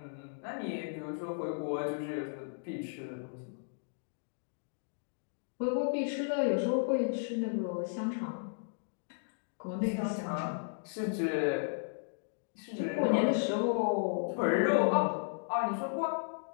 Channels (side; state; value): right; silent; digital silence